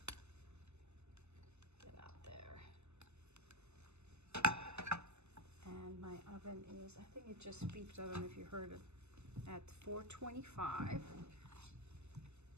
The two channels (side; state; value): left; late; 0.81 ms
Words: Get out there. And my oven is, I think it just beeped, I don't know if you heard it, at 425.